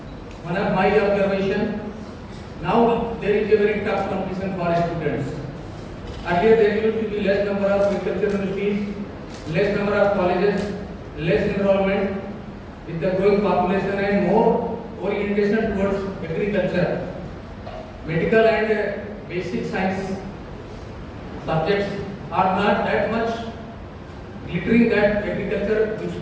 my observation, now there is a very tough competition for students. Earlier there used to be less number of agricultural universities, less number of colleges, less enrollment. With the growing population and more orientation towards agriculture, medical and basic science subjects are not that much glittering that agriculture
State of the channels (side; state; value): both; identical; correlation 1.00